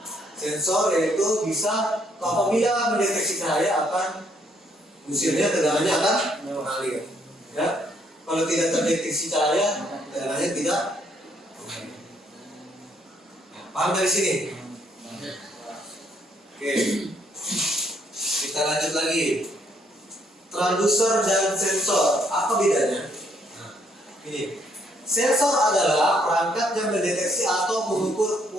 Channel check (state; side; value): normal; both; correlation 0.69